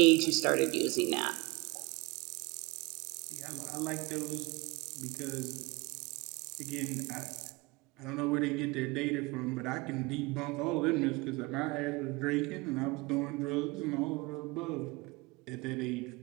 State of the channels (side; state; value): left; quieter; 24.6 dB